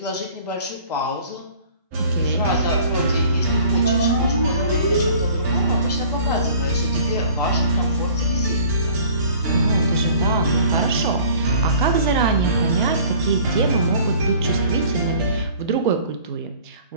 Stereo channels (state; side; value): inverted; both; correlation -0.49